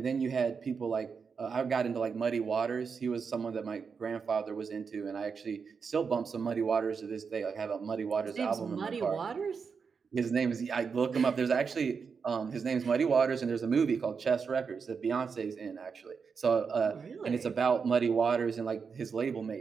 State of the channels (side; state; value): left; quieter; 5.7 dB